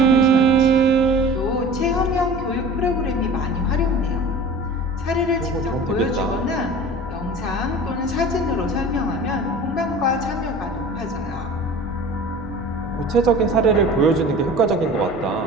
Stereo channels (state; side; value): normal; both; correlation 0.40